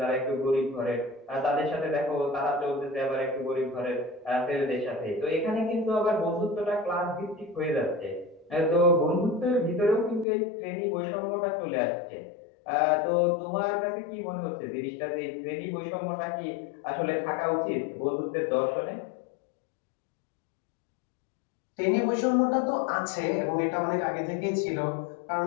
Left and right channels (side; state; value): right; drops out; at 10.2 s